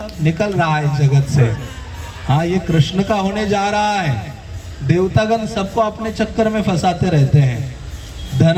निकल रहा है जगत से। हाँ, ये कृष्ण का होने जा रहा है। देवतागण सबको अपने चक्कर में फंसाते रहते हैं।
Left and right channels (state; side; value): identical; both; correlation 1.00